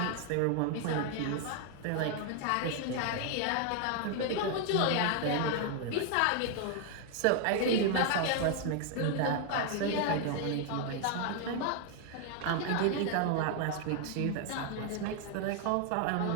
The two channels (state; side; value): different; both; correlation 0.00